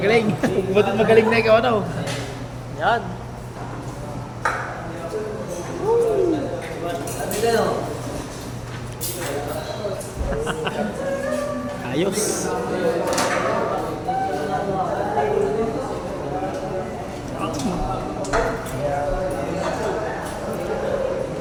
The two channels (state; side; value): identical; both; correlation 1.00